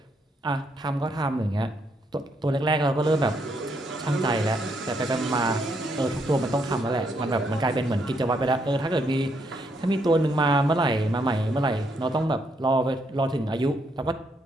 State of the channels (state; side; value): normal; both; correlation 0.75